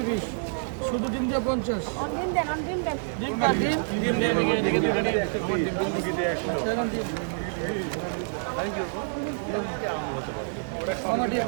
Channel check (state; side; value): silent; left; 60 dB below the other